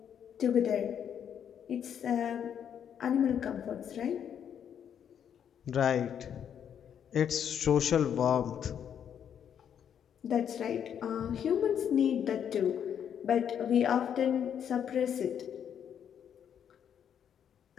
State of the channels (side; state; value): right; quieter; 8.7 dB